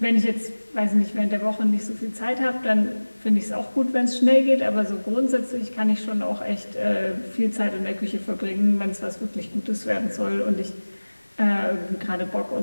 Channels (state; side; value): inverted; both; correlation -1.00